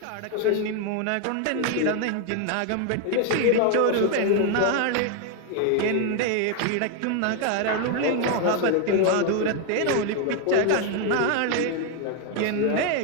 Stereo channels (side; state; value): both; different; correlation 0.01